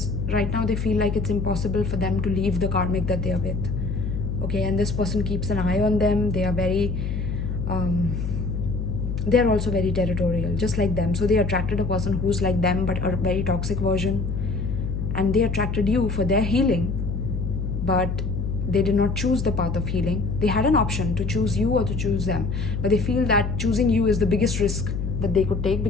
right now they feel like it's impossible for them to leave the karmic that they are with. Okay, and this person keeps an eye on them. They are very, they're also very territorial, just like them. So they attracted a person who's like them, but a very toxic version. And they attracted you for their healing, but they did not choose the path of healing. They had an option to choose you or to choose them, but they feel that choosing you is the biggest risk that they could take,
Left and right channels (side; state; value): left; noise; hum, 2 dB below the sound